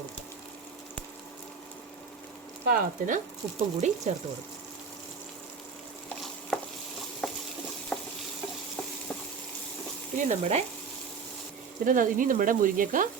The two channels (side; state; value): left; quieter; 5.7 dB